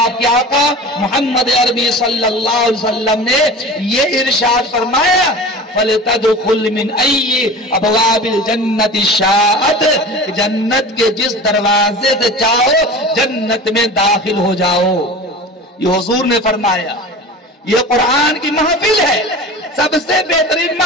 کے آقا محمد عربی صلی اللہ علیہ وسلم نے یہ ارشاد فرمایا، فَلْتَدْخُلْ مِنْ أَيِّ أَبْوَابِ الْجَنَّةِ شَاءَتْ، جنت کے جس دروازے سے چاہو جنت میں داخل ہو جاؤ۔ یہ حضور نے فرمایا۔ یہ قرآن کی محفل ہے، سب سے بہترین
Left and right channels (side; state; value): both; normal; correlation 0.35